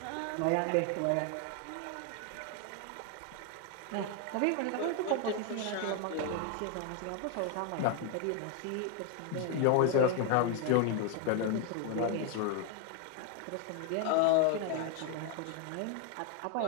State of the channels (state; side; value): different; both; correlation 0.01